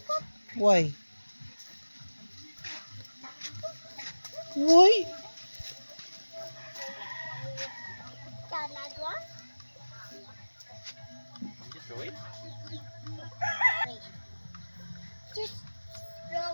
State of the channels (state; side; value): inverted; both; correlation -1.00